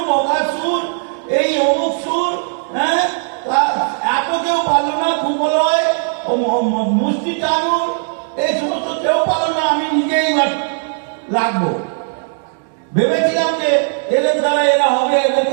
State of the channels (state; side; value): silent; left; digital silence